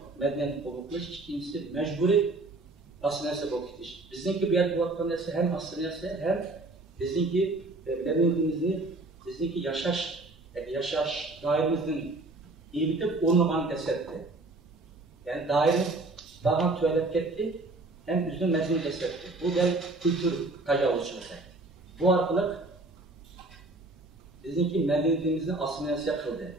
medeniyet kovukluş, ikincisi mecburi asıl neresi kovukluş. Bizimki bir yer bu vakti neresi hem asıl neresi hem bizimki medeniyetimizin, bizimki yaşaş dairemizin iyi bitip onu bana desetti. Yani daire daha tuvalet gitti, hem üzüm mezun desetti. Bu da kültür tecavüzçülüğü. Bu arkalık bizimki medeniyetimizin asimilasiya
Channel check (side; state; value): left; quieter; 3.0 dB